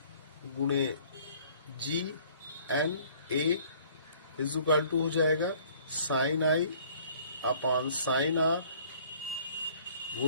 गुणे GNA इज इक्वल टू हो जाएगा sine I upon sine R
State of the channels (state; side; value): inverted; both; correlation -0.55